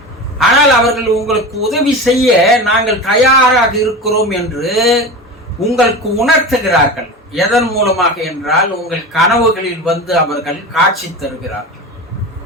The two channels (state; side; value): normal; both; correlation 0.28